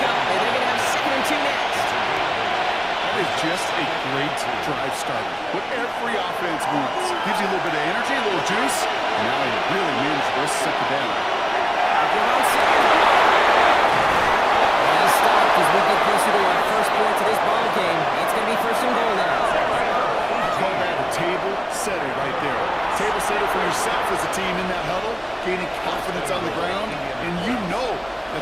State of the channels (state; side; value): identical; both; correlation 1.00